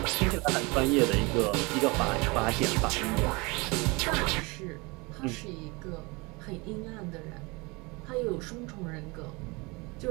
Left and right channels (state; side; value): quieter; left; 26.5 dB